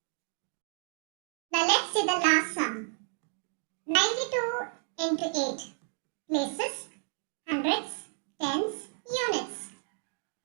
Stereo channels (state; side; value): silent; left; 57 dB below the other